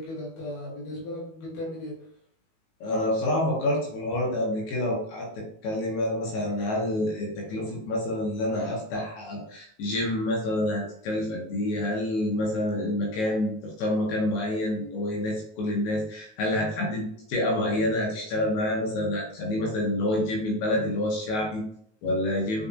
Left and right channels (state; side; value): late; right; 19 ms